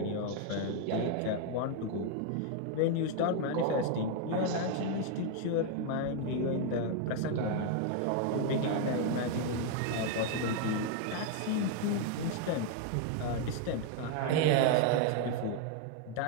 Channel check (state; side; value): different; both; correlation 0.00